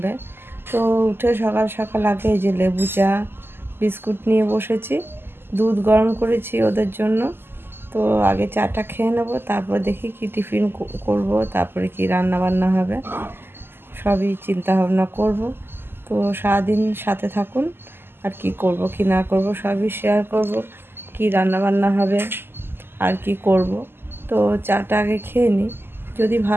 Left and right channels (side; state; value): left; late; 0.11 ms